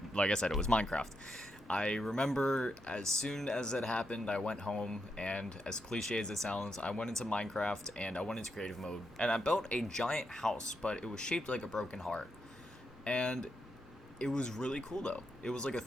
like I said, it was Minecraft. I remember as soon as it happened, I went home, and as cliche as it sounds, I went into Minecraft and I went into creative mode, and I built a giant house, but it was shaped like a broken heart. And it was really cool though. It was like a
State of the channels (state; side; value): normal; both; correlation 0.83